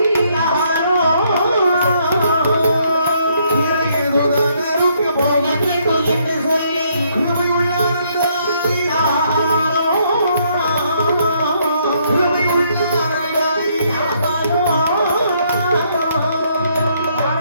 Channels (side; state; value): both; inverted; correlation -0.71